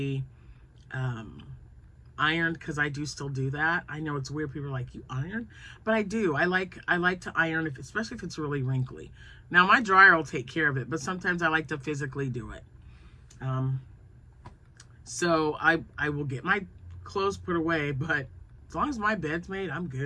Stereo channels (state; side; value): identical; both; correlation 1.00